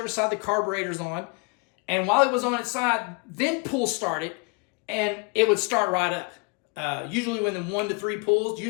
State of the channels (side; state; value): right; quieter; 32.4 dB